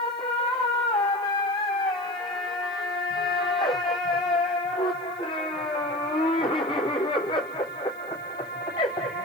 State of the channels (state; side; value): noise; left; hiss, 28 dB below the sound